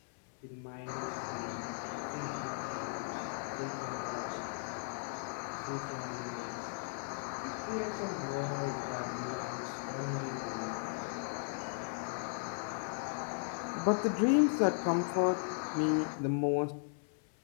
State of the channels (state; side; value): silent; right; 53 dB below the other